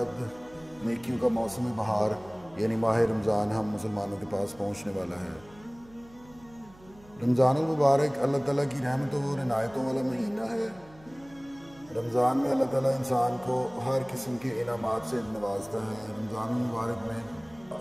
نیکیوں کا موسم بہار یعنی ماہ رمضان ہم مسلمانوں کے پاس پہنچنے والا ہے۔ رمضان المبارک اللہ تعالیٰ کی رحمتوں اور عنایتوں والا مہینہ ہے۔ رمضان میں اللہ تعالیٰ انسان کو ہر قسم کے انعامات سے نوازتا ہے۔ رمضان المبارک میں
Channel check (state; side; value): noise; right; hum, 24 dB below the sound